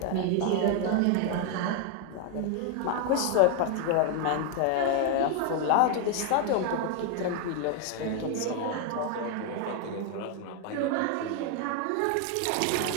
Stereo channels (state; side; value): different; both; correlation 0.00